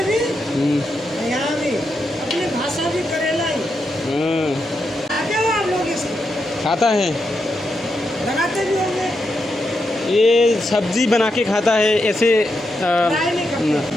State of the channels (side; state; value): both; normal; correlation 0.84